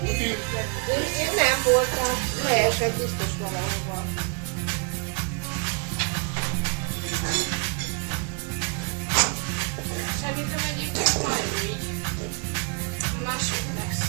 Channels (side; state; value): left; quieter; 34.9 dB